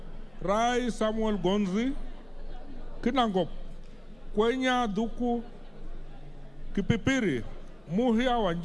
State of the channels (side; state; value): left; noise; hum, 28 dB below the sound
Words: Rai Samuel Gonzi. Kinangop, Kwenya Duku. Kipipiri, Muhia